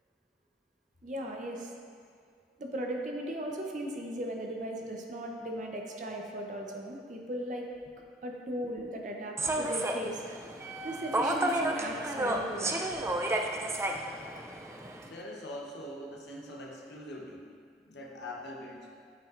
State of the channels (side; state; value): both; normal; correlation 0.50